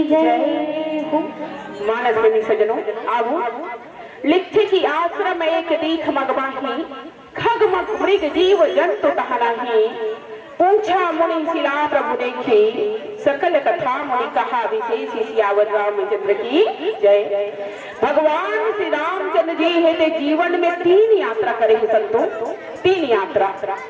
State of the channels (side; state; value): both; identical; correlation 1.00